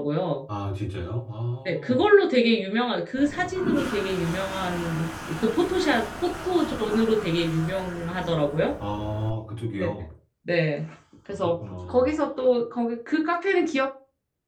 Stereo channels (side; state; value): both; identical; correlation 1.00